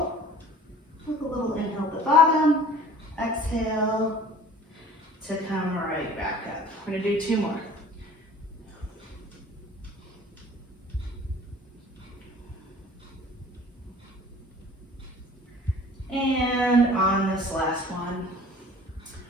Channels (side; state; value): both; normal; correlation 0.47